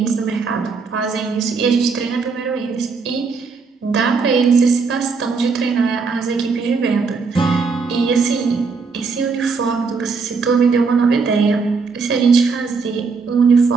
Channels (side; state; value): left; quieter; 4.8 dB